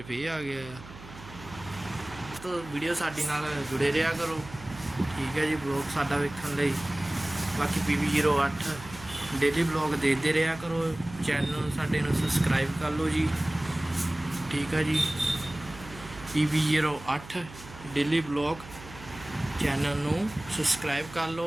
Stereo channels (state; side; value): noise; right; hum, 17 dB below the sound